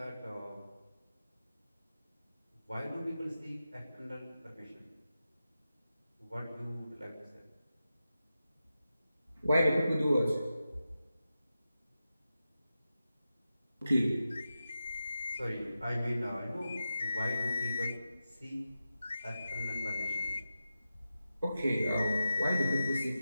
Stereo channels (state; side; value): inverted; both; correlation -0.91